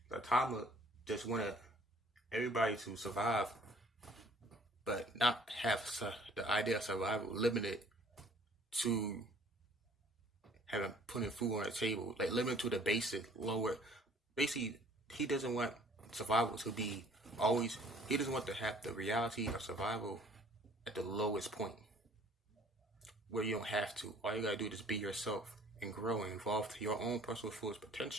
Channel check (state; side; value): normal; both; correlation 0.55